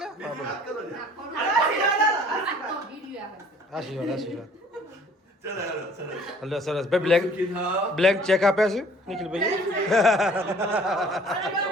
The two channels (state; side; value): normal; both; correlation 0.54